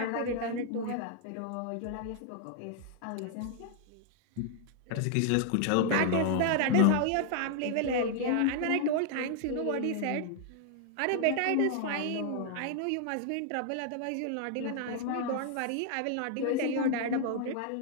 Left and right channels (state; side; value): different; both; correlation 0.00